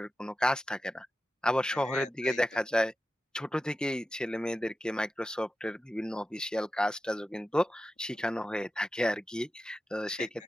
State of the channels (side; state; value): both; normal; correlation 0.92